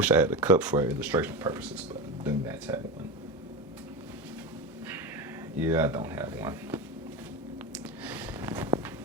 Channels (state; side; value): normal; both; correlation 0.22